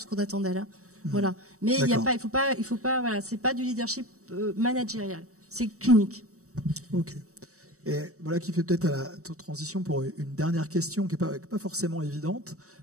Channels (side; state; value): left; late; 0.65 ms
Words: qu'on attend d'elles. Hein. Voilà. Mais il faut pas. Voilà, c'est pas du leadership managérial. C'est clinique. Ok. Et voilà qui fait peut-être à la transition pour une dernière question qui est pas forcément évidente,